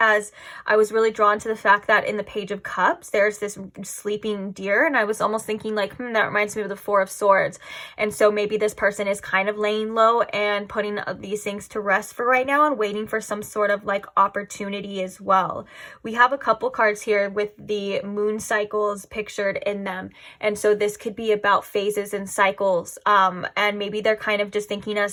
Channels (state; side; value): identical; both; correlation 1.00